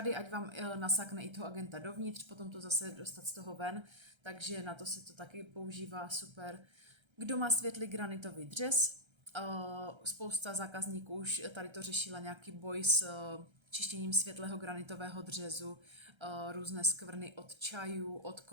ať vám nasákne i toho Agenta dovnitř, potom to zase dostat z toho ven, takže na to se to taky používá super. Kdo má světlý granitový dřez, spousta zákazníků už tady to řešila nějaký boj s čištěním světlého granitového dřezu, různé skvrny od čajů, od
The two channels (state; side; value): late; left; 1.3 ms